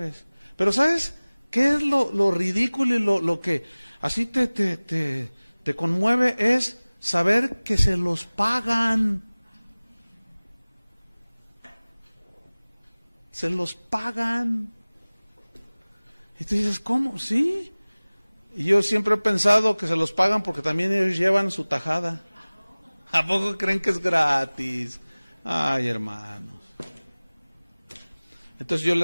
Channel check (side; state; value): both; inverted; correlation -1.00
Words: Pero ¿sabes qué es lo ridículo y lo que así te conmueve? Es saber que se los pagan. Se los pagan. Y tú dices, ¿cómo? Sí. Y yo siempre he pensado que se los pagan porque también ellos llevan su tajada. ¿A poco creen que es gratis? Ay, hermanos. Entonces yo le